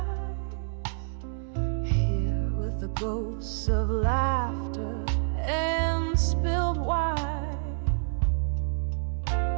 Here with the ghosts of laughter and spilled wine,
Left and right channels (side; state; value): left; silent; 59 dB below the other